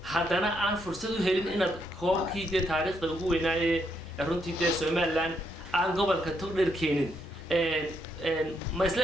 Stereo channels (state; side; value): normal; both; correlation 0.77